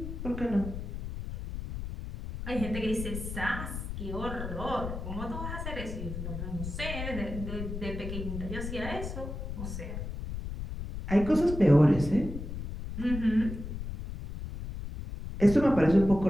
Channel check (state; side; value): noise; left; rumble, 7 dB below the sound